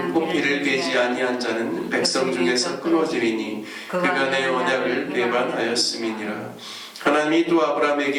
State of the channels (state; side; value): identical; both; correlation 1.00